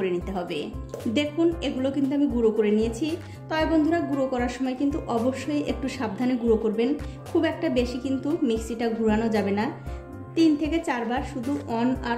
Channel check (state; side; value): identical; both; correlation 1.00